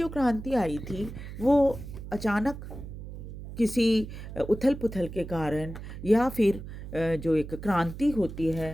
क्रांति आई थी वो अचानक किसी उथल पुथल के कारण या फिर जो एक क्रांति होती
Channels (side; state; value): right; noise; hum, 11 dB below the sound